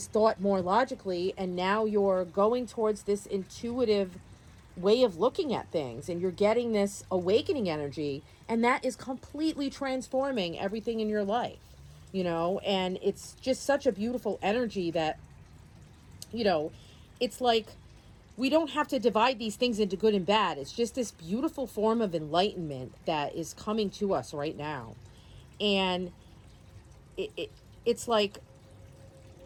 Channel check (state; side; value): identical; both; correlation 1.00